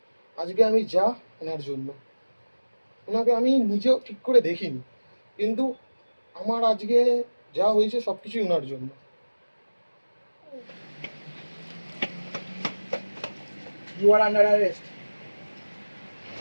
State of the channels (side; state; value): both; inverted; correlation -1.00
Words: আজকে আমি যা ওনার জন্য, ওনাকে আমি নিজেও ঠিক করে দেখিনি, কিন্তু আমার আজকে যা হয়েছে সবকিছুই ওনার জন্য। You are under arrest.